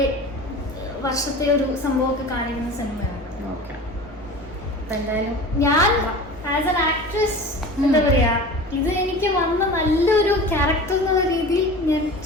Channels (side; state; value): both; normal; correlation 0.36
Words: വർഷത്തെ ഒരു സംഭവമൊക്കെ കാണിക്കുന്ന സിനിമയാണ്. ഞാൻ ആസ് എൻ ആക്ട്രസ് എന്താ പറയാ, ഇത് എനിക്ക് വന്ന നല്ലൊരു ക്യാരക്ടർ എന്നുള്ള രീതിയിൽ ഞാൻ